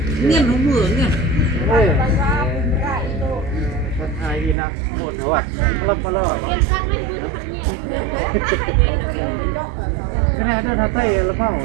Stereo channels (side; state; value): left; drops out; at 4.5 s